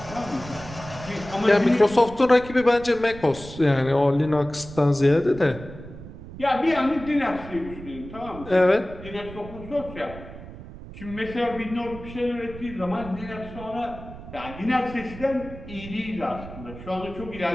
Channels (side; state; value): right; noise; rumble, 14 dB below the sound